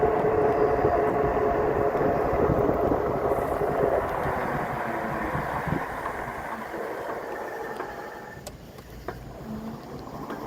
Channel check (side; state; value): both; identical; correlation 1.00